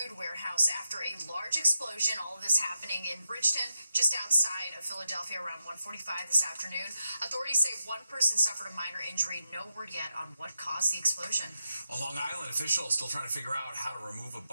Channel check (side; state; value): both; inverted; correlation -0.87